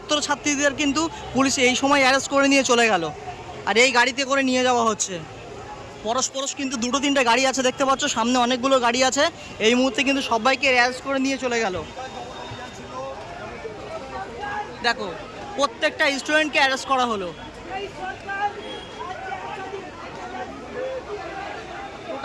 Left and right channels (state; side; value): identical; both; correlation 1.00